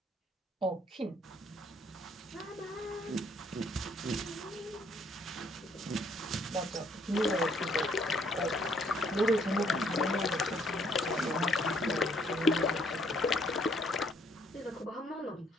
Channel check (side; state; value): both; normal; correlation 0.66